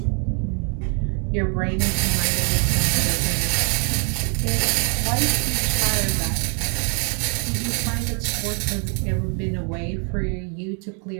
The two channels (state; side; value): quieter; left; 39.2 dB